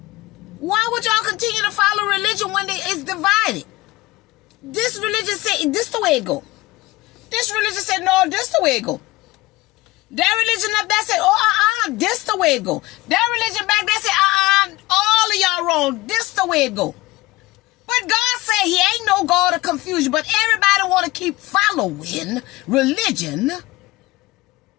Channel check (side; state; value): right; quieter; 20.1 dB